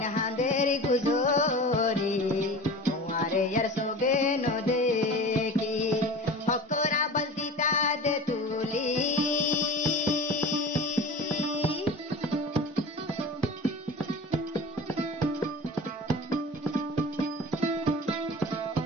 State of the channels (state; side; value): normal; both; correlation 0.35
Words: হাঁদের গুজরি তোমারে ইয়ার সোগে ন দেখি হকরা বলদিতা দে তুলি